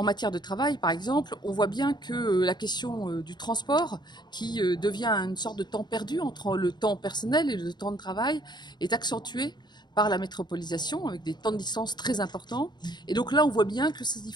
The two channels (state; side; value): late; right; 0.21 ms